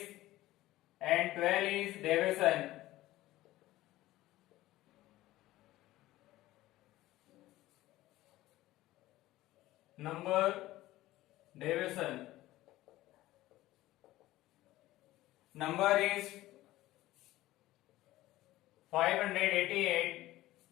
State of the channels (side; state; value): right; quieter; 16.5 dB